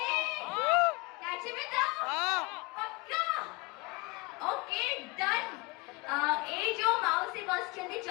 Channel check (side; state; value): right; quieter; 25.9 dB